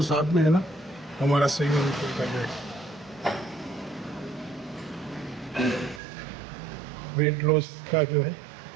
साथ में है ना, हमारा स्विमिंग पूल का जो है वेट लॉस का जो है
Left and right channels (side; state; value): left; drops out; at 6.0 s